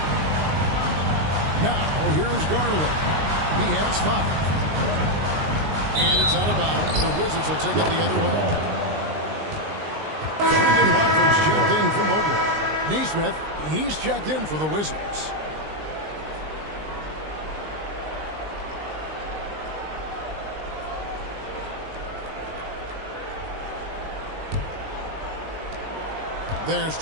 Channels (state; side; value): late; left; 19 ms